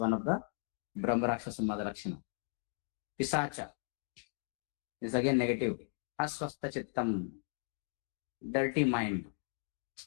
of the Brahma Rakshasa Madharakshana. Pisacha is again negative. Aswastha Chittam, dirty mind.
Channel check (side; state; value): right; silent; 53 dB below the other